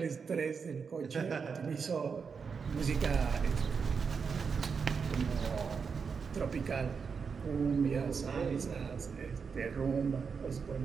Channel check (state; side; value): quieter; left; 5.8 dB